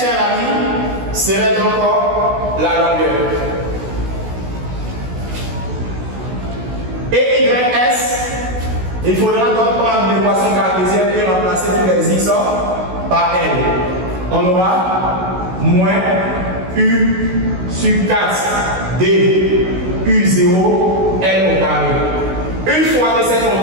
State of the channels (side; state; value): left; late; 16 ms